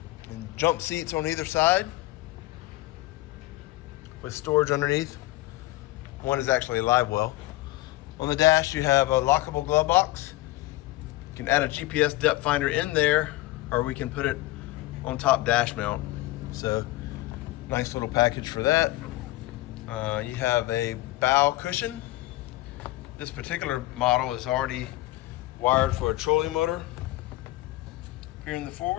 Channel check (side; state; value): right; quieter; 17.9 dB